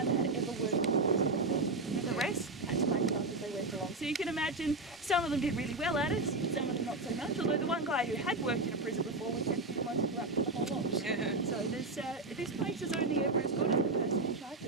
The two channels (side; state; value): left; quieter; 3.1 dB